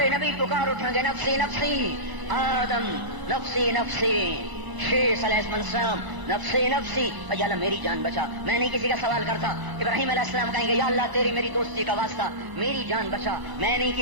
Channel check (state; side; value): late; left; 1.0 ms